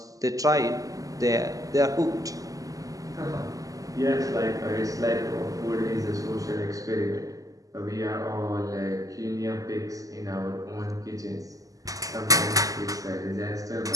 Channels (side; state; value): left; late; 0.17 ms